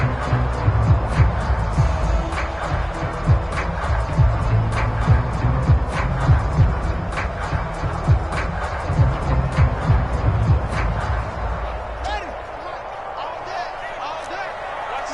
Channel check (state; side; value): identical; both; correlation 1.00